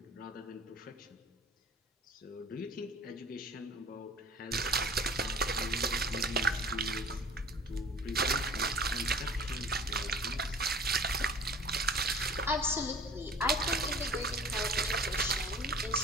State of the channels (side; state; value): both; normal; correlation 0.45